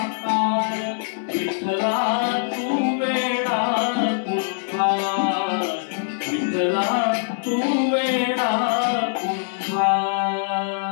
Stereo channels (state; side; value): silent; right; 64 dB below the other